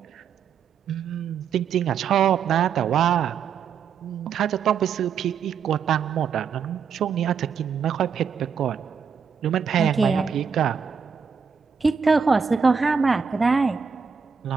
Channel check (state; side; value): quieter; left; 6.4 dB